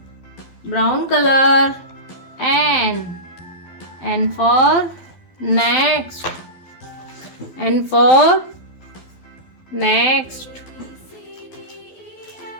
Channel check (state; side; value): late; right; 12 ms